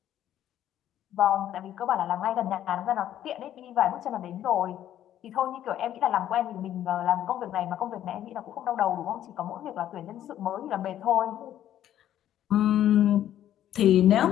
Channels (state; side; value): quieter; right; 11.6 dB